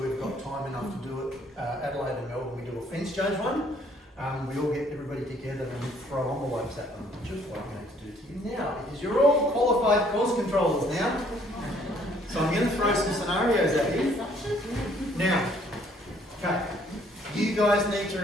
we've got time enough to do it. Adelaide and Melbourne, we do a fence judge one. We all get everybody together and throw envelopes at them, just like I'm going to do to you now, because you're all qualified course controllers now. So I'm going to throw some scenarios at you. Now, okay, you guys need to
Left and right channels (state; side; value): normal; both; correlation 0.62